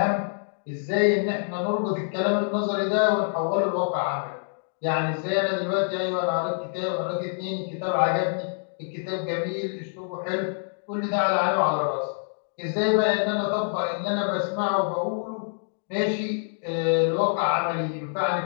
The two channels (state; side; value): silent; right; digital silence